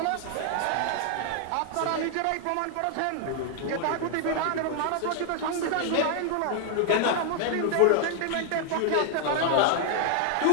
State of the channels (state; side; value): different; both; correlation 0.00